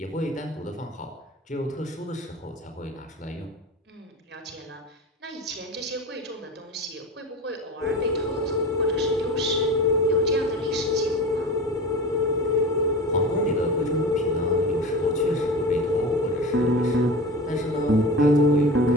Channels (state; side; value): normal; both; correlation 0.31